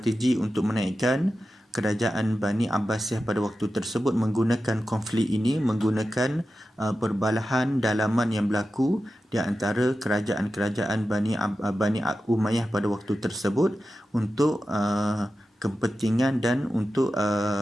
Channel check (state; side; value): normal; both; correlation 0.92